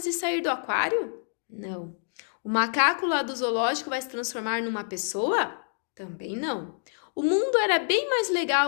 e sair do aquário? Não. O macaco lá do zoológico vai se transformar numa pessoa? Também não. O mundo era bem mais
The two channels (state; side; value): silent; right; digital silence